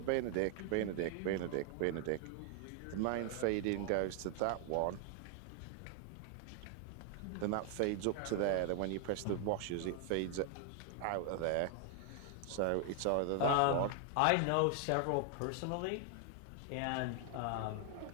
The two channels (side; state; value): both; different; correlation 0.00